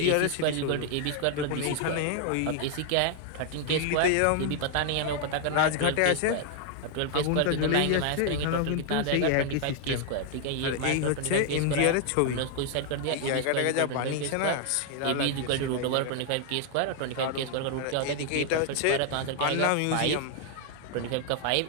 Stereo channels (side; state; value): both; different; correlation 0.00